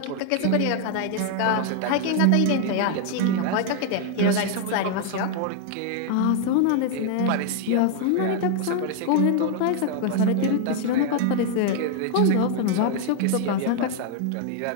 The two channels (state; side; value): different; both; correlation 0.00